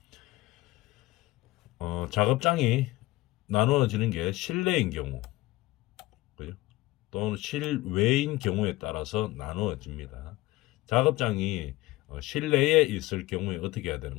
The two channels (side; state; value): right; quieter; 18.8 dB